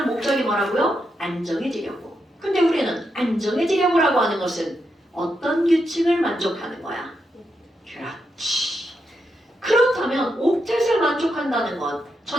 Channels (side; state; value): both; normal; correlation 0.84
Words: 목적이 뭐라고요? 안정해지려고. 근데 우리는 안정해지려고라고 하는 것은 어떤 규칙을 만족하는 거야? 그렇지. 그렇다면 옥텟을 만족한다는 건